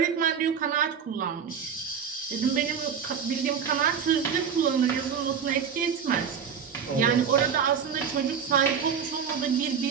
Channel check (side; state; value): left; quieter; 7.1 dB